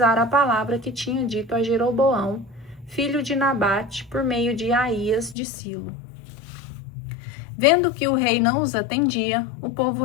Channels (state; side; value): drops out; right; at 5.4 s